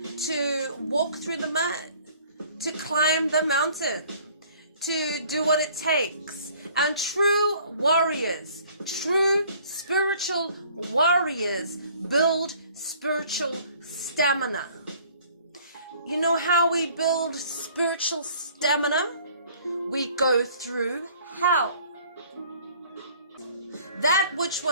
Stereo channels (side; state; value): both; inverted; correlation -0.55